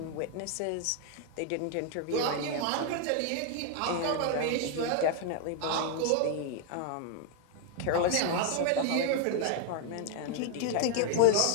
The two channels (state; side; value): different; both; correlation 0.00